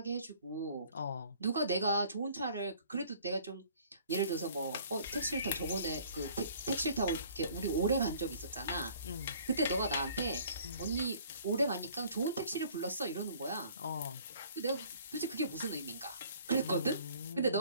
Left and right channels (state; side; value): inverted; both; correlation -0.54